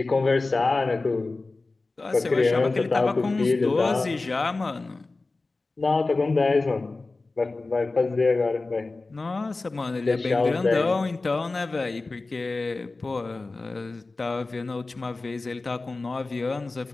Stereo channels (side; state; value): right; quieter; 3.5 dB